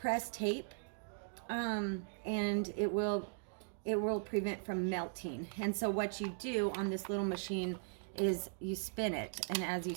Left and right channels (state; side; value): silent; left; digital silence